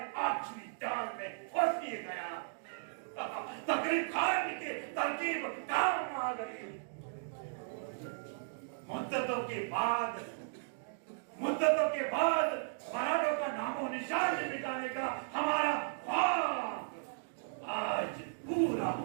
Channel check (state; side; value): silent; left; digital silence